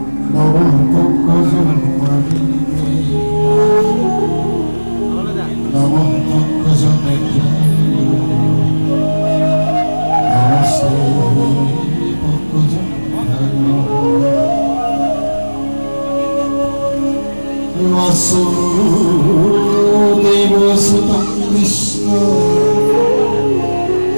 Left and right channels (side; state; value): both; inverted; correlation -1.00